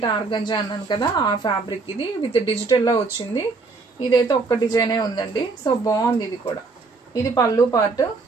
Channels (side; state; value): left; quieter; 4.0 dB